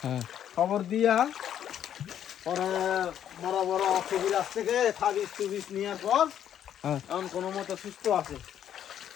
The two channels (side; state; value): right; quieter; 10.0 dB